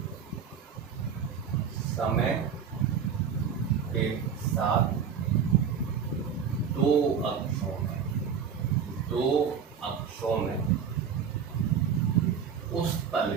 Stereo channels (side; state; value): left; quieter; 7.2 dB